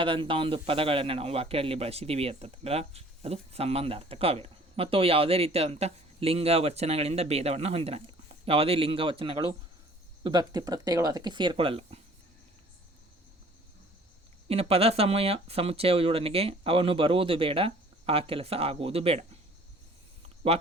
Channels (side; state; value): both; normal; correlation 0.52